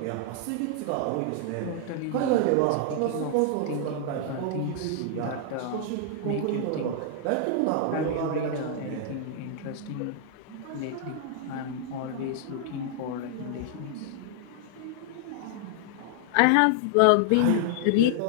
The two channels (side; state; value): both; different; correlation -0.01